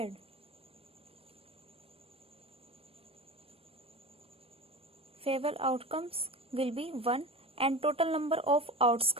Favorable outcomes will be 1 and total number of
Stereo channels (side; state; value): left; late; 0.28 ms